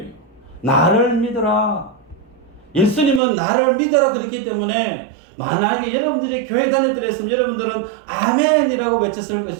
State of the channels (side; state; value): left; drops out; at 3.2 s